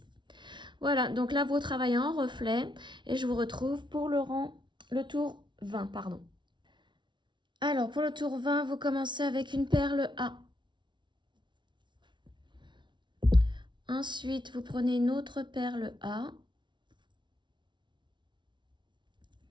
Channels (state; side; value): late; left; 0.23 ms